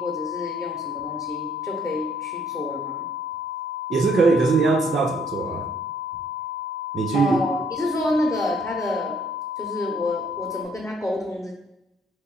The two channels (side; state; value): both; normal; correlation 0.63